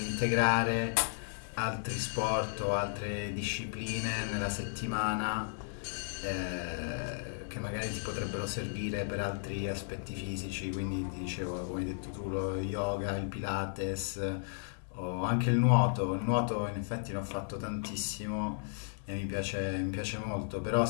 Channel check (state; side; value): silent; right; digital silence